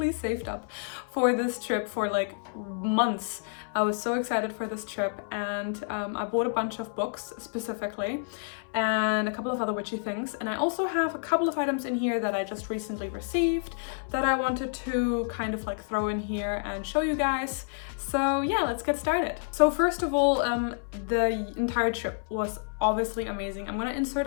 saved up for this trip for like months. I was so excited for this trip, and I bought a bunch of books specifically and a couple of other witchy things, and I also have a couple of items in here that I just recently received that I wanted to kind of like throw in here and show you guys. So yeah, let's get started. So first of all, the entire trip was obviously amazing. I'm gonna insert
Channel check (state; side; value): silent; right; 59 dB below the other